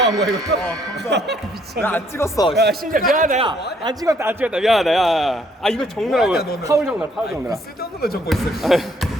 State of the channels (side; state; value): both; normal; correlation 0.66